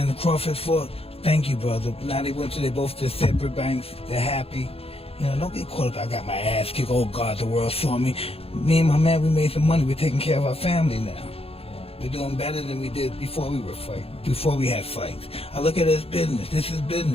Crawford fought. Thank you, brother. Now they both to separate banks. They're happy. You know, don't get caught up. I got my ass kicked. Oh God, the world saw me. Me and my man, we made some money. We're taking care of our family now. We're doing better than we did before we were fighting. Before we had fights. I look at it as business. This is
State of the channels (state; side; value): late; right; 0.28 ms